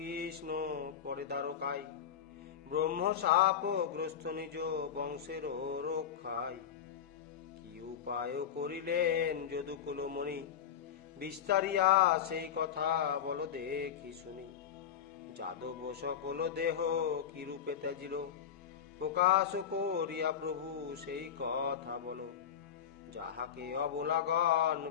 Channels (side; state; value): right; quieter; 8.5 dB